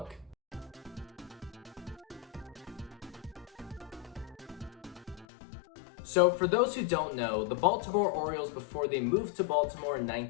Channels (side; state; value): right; drops out; at 5.2 s